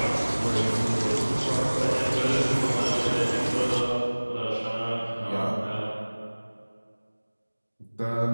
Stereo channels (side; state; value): both; inverted; correlation -1.00